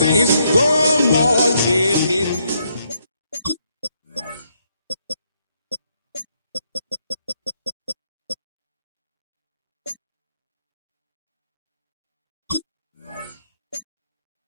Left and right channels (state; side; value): inverted; both; correlation -0.75